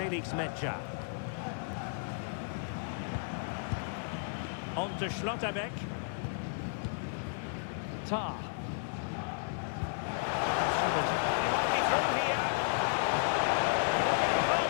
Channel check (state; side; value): silent; right; 56 dB below the other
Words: Mecha. On to Schlotterbeck. Tar. He might be through here. Oh,